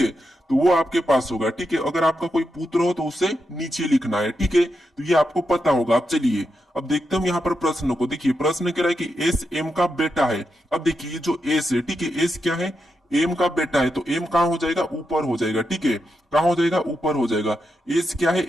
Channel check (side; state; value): both; normal; correlation 0.85